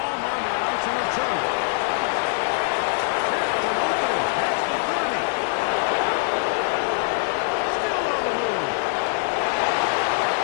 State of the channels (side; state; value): right; silent; digital silence